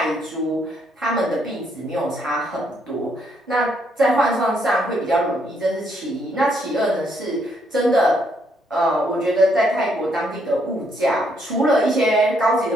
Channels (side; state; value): both; normal; correlation 0.72